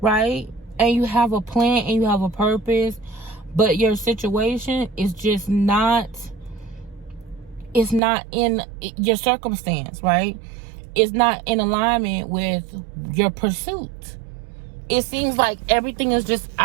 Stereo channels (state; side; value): drops out; left; at 8.0 s